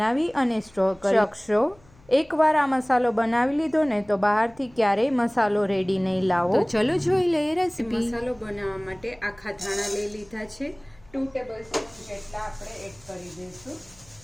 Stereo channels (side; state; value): left; noise; hum, 28 dB below the sound